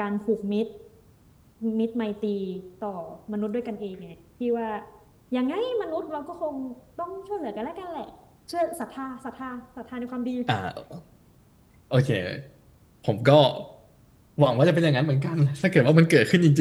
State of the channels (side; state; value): both; identical; correlation 1.00